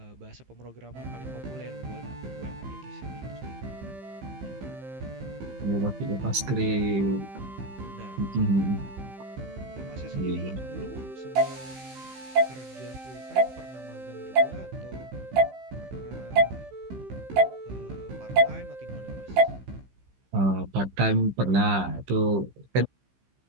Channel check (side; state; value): left; late; 15 ms